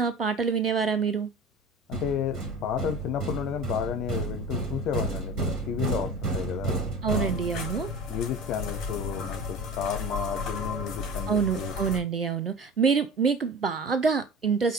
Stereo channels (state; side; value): normal; both; correlation 0.35